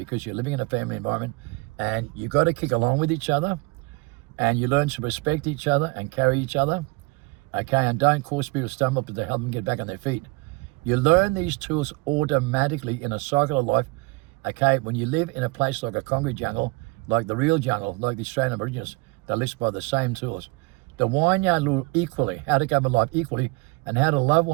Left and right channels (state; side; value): quieter; left; 25.9 dB